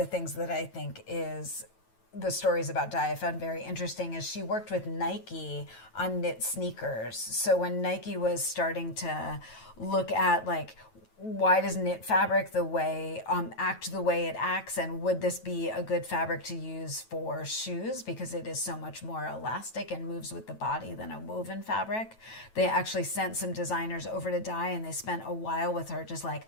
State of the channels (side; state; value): right; late; 9.2 ms